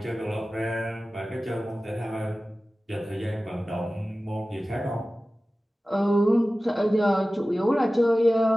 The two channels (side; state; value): both; normal; correlation 0.96